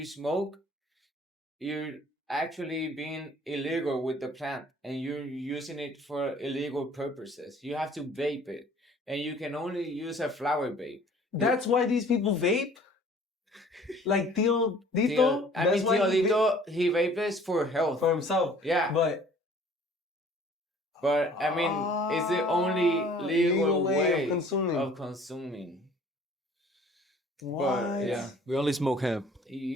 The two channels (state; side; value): normal; both; correlation 0.53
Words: smoke, you're actually being illegal with the plant and you're using it for illegal purposes. You have to vape it, and you can only use a flower vape. That's why these people vape? Like Tio Dito? Tio Dito, he vapes for health. For himself. Yeah. But I mean, it's the only legal way of consuming. What? But, yeah. We only smoke hemp.